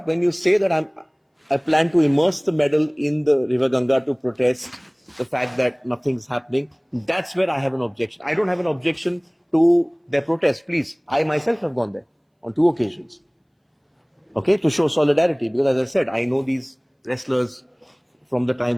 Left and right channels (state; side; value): identical; both; correlation 1.00